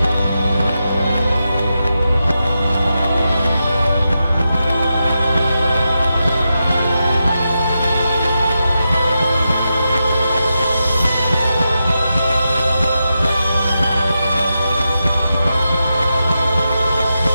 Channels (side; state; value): both; inverted; correlation -0.88